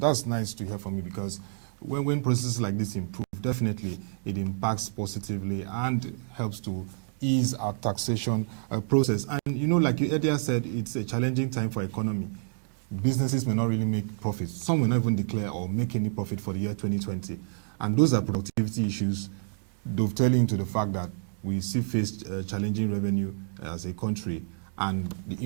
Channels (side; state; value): left; silent; digital silence